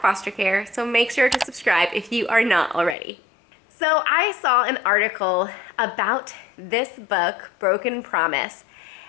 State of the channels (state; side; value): drops out; right; at 3.0 s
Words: foster care, so make sure to subscribe if you are not already. So I saw an article about this book, Broken Promise,